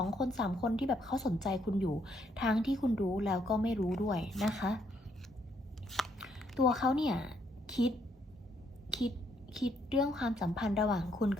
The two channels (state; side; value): normal; both; correlation 0.72